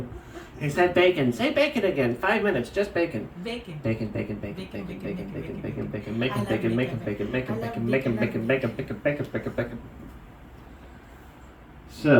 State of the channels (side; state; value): both; identical; correlation 1.00